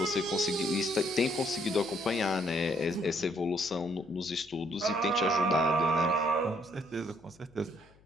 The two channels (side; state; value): left; noise; hum, 29 dB below the sound